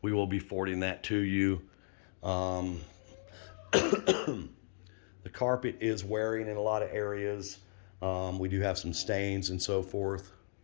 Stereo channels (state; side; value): silent; right; 54 dB below the other